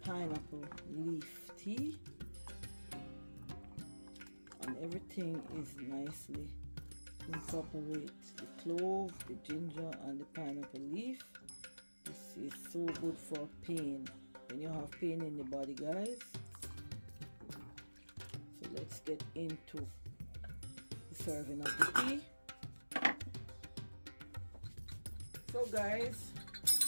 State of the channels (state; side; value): inverted; both; correlation -1.00